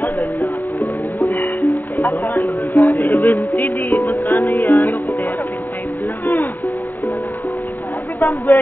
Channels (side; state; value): right; late; 0.089 ms